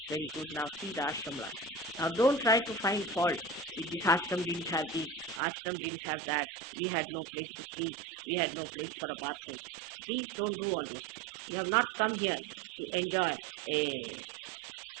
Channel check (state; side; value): drops out; left; at 5.4 s